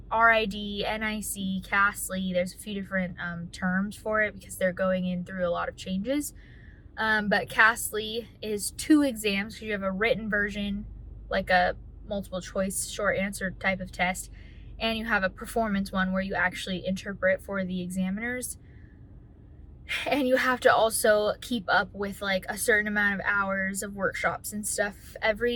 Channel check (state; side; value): identical; both; correlation 1.00